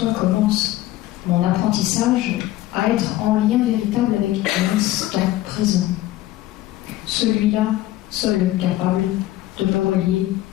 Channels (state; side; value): quieter; right; 15.4 dB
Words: commence mon apprentissage à être en lien véritable avec l'instant présent. Celui-là, seul capable de me relier